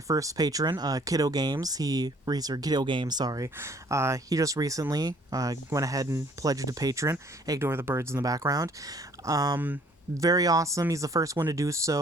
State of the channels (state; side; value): normal; both; correlation 0.58